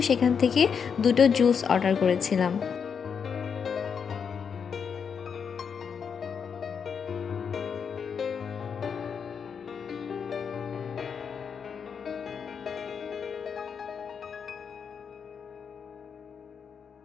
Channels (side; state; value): right; quieter; 6.6 dB